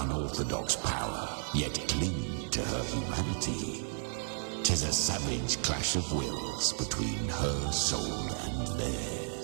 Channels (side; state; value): left; silent; digital silence